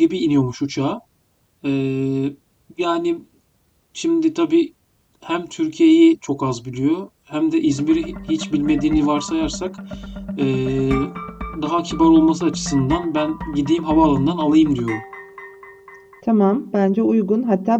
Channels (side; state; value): both; identical; correlation 1.00